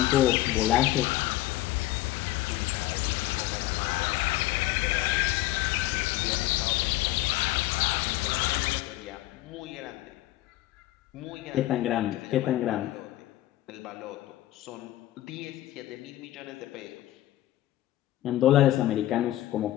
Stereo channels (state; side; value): quieter; right; 15.8 dB